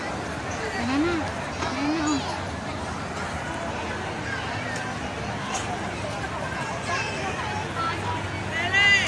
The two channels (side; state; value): both; identical; correlation 1.00